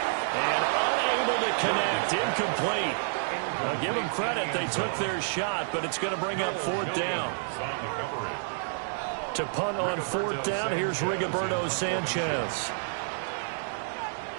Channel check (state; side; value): silent; left; digital silence